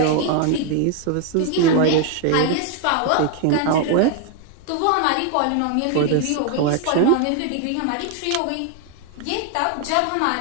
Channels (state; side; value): different; both; correlation 0.00